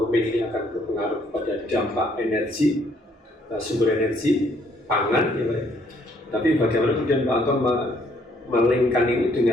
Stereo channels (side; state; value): both; normal; correlation 0.66